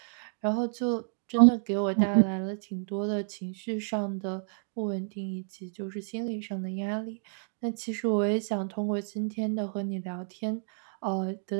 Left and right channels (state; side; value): silent; left; digital silence